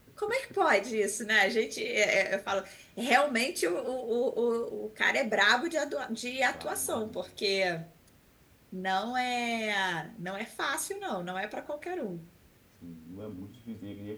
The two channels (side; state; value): both; identical; correlation 1.00